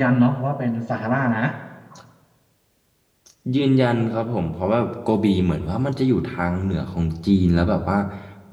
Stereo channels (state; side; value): identical; both; correlation 1.00